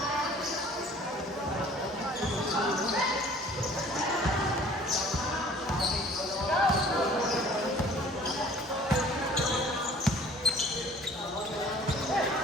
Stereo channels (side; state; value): both; normal; correlation 0.51